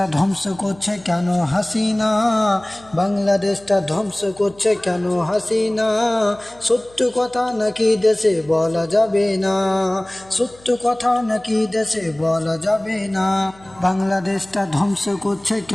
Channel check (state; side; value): noise; left; hum, 26 dB below the sound